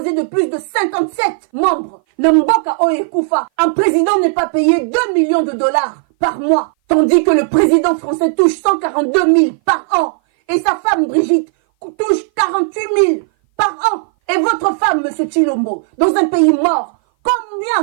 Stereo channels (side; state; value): left; silent; 58 dB below the other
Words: de plus de 57 membres. Namboka est Koufa. Un président n'est pas payé 2 millions de dollars par mois. Tandis que le président français touche 142 000 par an. Et sa femme Brigitte touche 48 000 par an. Et votre femme, monsieur Chilombo, dans un pays mort,